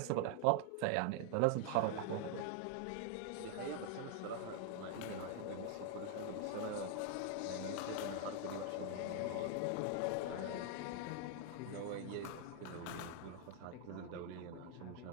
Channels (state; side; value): different; both; correlation 0.00